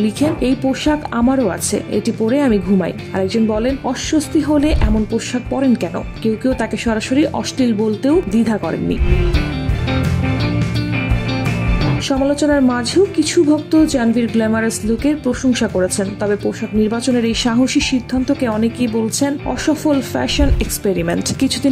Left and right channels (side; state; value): both; identical; correlation 1.00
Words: এই পোশাক আমারও আছে, এটি পরে আমি ঘুমাই। আরেকজন বলেন, অস্বস্তি হলে এমন পোশাক পরেন কেন? কেউ কেউ তাকে সরাসরি অশ্লীল বলতেও দ্বিধা করেননি। সমালোচনার মাঝেও কিছু ভক্ত জাহ্নবীর গ্ল্যামারাস লুকের প্রশংসা করেছেন। তবে পোশাক নির্বাচনের এই সাহসী সিদ্ধান্তকে অনেকেই বলছেন অসফল ফ্যাশন এক্সপেরিমেন্ট।